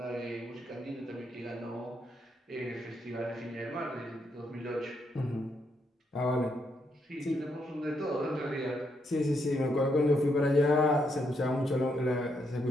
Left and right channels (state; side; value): normal; both; correlation 0.77